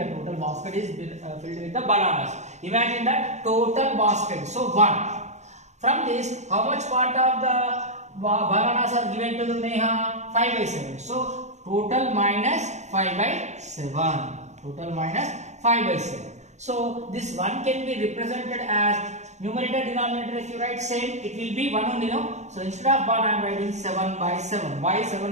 total basket is filled with the bananas. Imagine that total basket. So 1. From this, how much part of the bananas are given to the Neha? 5 by 7. So total minus 5 by 7. Total minus 5 by 7. So this 1 can be represented as numerator denominator. If you write same, it will be 1 only, no? So instead of 1, I am writing 7 by 7. Why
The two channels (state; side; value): late; left; 0.33 ms